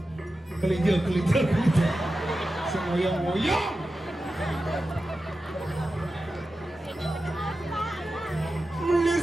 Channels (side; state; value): both; normal; correlation 0.92